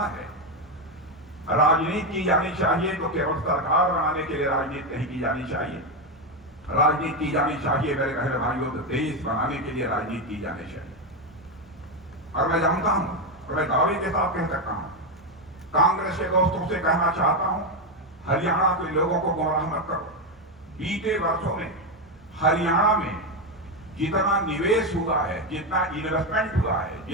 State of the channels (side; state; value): both; normal; correlation 0.09